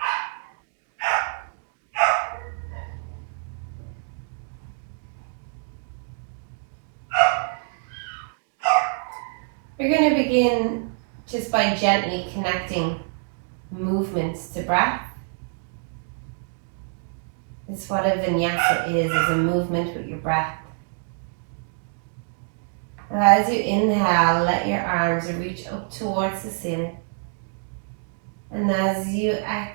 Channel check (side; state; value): left; silent; 61 dB below the other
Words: We're going to begin just by gently connecting movements to breath. It's what a vinyasa is a movement with your breath. And as you inhale, let your arms reach up towards the ceiling. And as you